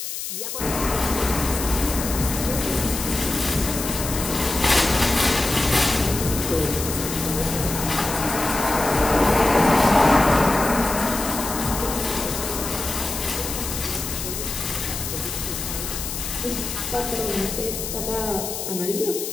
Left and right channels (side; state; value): left; noise; hiss, 6 dB below the sound